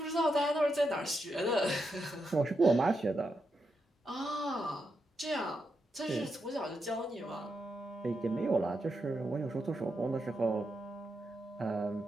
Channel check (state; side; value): normal; both; correlation 0.84